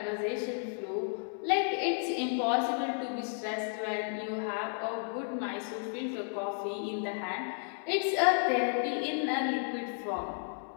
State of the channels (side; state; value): right; silent; 56 dB below the other